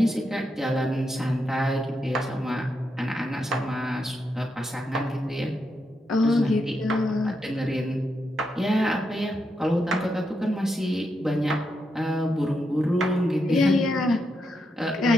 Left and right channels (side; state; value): both; normal; correlation 0.83